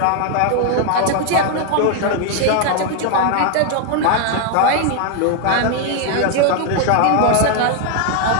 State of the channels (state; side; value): different; both; correlation 0.00